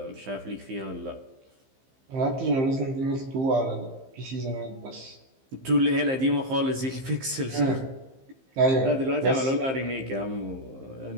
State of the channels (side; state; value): left; late; 15 ms